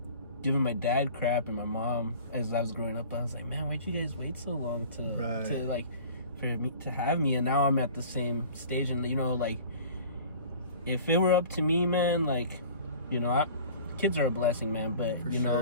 giving my dad crap and my mom as I was growing up. I was like, man, why'd you guys wait so long to like for me to have me? And now I'm at the same stage, and you know, like, if it were up to me, man, like, you know, kids are a blessing, man, but you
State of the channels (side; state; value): both; inverted; correlation -0.44